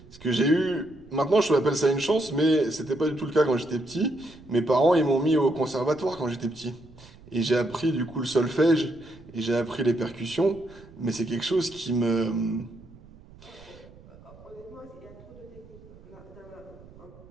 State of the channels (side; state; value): right; noise; rumble, 22 dB below the sound